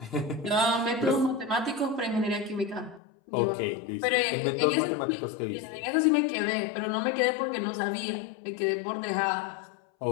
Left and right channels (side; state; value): right; drops out; at 3.0 s